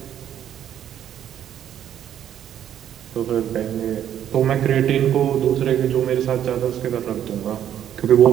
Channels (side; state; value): left; quieter; 10.4 dB